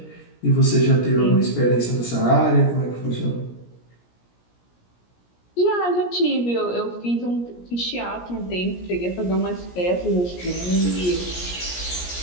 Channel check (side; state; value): right; late; 17 ms